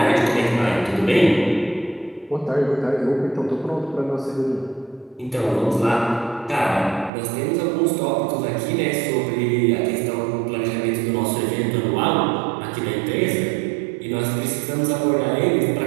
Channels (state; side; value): drops out; left; at 7.1 s